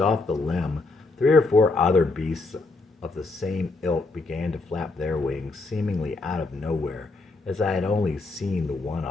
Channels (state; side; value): quieter; right; 3.5 dB